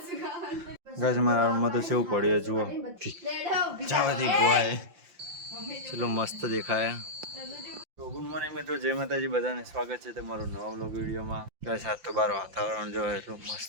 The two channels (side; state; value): left; late; 5.8 ms